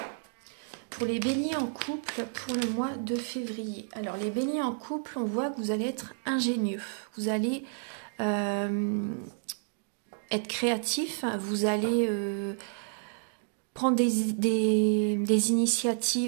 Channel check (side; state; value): left; silent; digital silence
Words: Pour les béliers en couple pour le mois de février. Alors les béliers en couple, on voit que vous allez être ingénieux. Vous allez être créatif, vous allez... prendre des